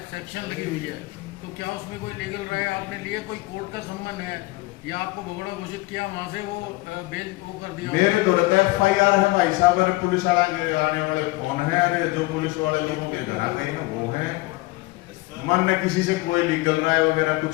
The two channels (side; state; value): right; quieter; 21.5 dB